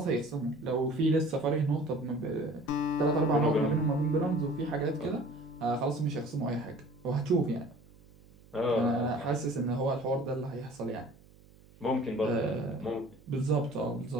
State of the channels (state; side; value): noise; right; hum, 25 dB below the sound